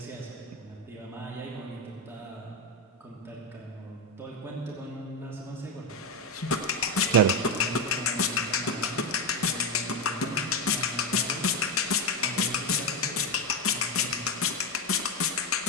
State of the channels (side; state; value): both; normal; correlation 0.10